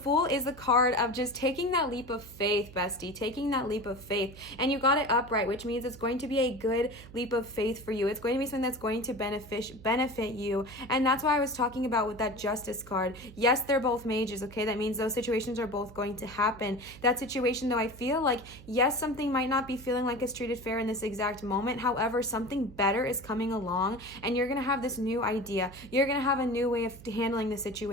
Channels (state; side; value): noise; right; hum, 18 dB below the sound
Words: is the card of just taking that leap of faith, bestie, taking that leap of faith. And you got it upright, which means it's going to be a good leap of faith for you. It's going to be something that's going to benefit you. And that's why I was talking about with that Justice card. Yes, they're both mages, okay? That means those situations are both going to happen. That situation, though, I feel like, yes, something might not be feeling like it's treated fair in this exact moment. However, something better is coming along, and you're going to have this new idea. You're going to have a new way of handling the